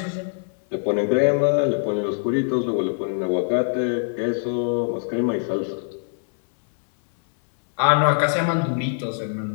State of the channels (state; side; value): silent; right; 64 dB below the other